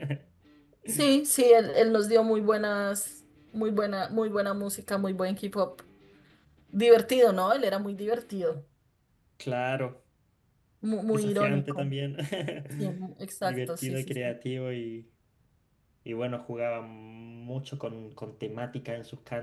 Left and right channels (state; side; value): identical; both; correlation 1.00